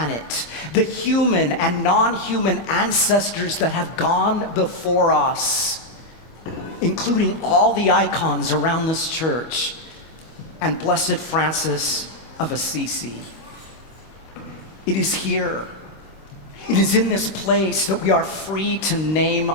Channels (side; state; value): both; normal; correlation -0.01